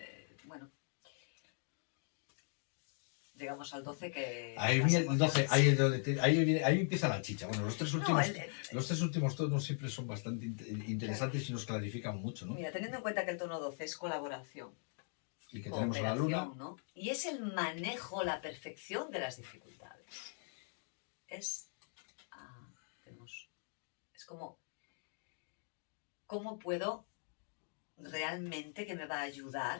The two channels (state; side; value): silent; right; 51 dB below the other